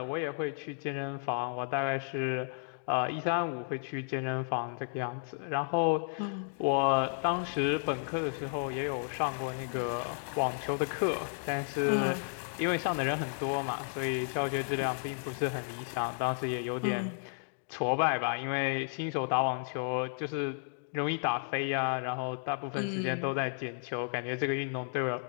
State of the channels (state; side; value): silent; right; digital silence